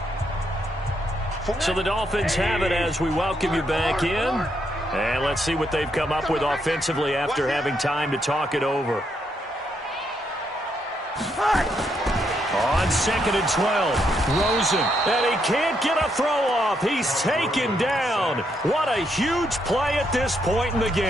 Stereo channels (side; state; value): both; normal; correlation 0.77